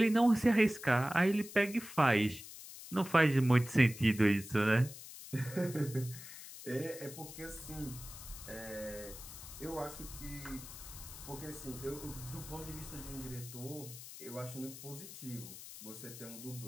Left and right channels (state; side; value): noise; left; hiss, 13 dB below the sound